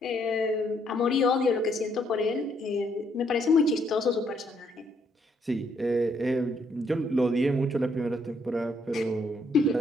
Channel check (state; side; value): normal; both; correlation 0.71